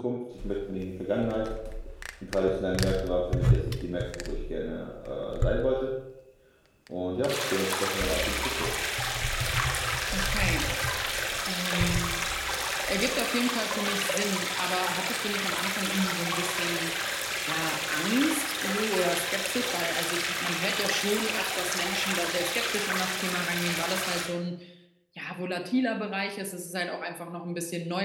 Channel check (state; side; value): identical; both; correlation 1.00